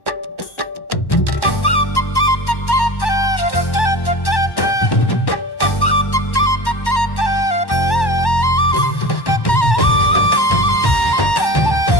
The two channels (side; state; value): right; late; 1.1 ms